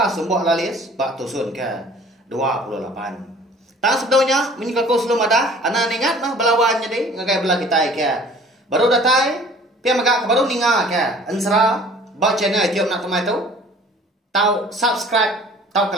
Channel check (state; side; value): normal; both; correlation 0.50